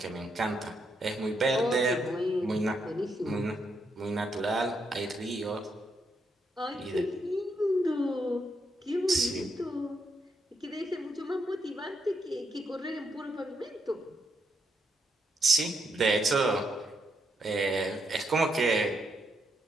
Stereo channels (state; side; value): normal; both; correlation 0.79